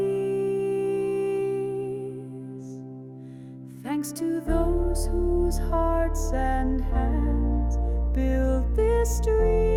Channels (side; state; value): both; identical; correlation 1.00